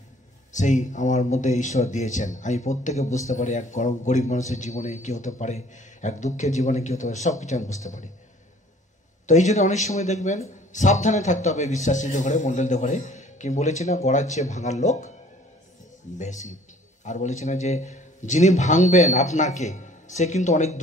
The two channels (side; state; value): both; normal; correlation 0.54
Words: সেই আমার মধ্যে ঈশ্বর দিয়েছেন। আমি প্রত্যেকে বুঝতে পারি এক গরিব মানুষের জীবনে কি হতে পারে, এক দুঃখের জীবনে কি হতে পারে, সব কিছু আমি বুঝতে পারি। তো এই জন্য অনেক সময় দেখবেন সাবধানে থাকতে হবে বিশ্বাসীদের ঘরে, মণ্ডলদের ঘরে। কি বলেছি না, গড়ার চেয়ে ভাঙার লোক বেশি। আর বলেছি না যে যিনি ভাঙবেন আপনাকে, সে কিন্তু অনেক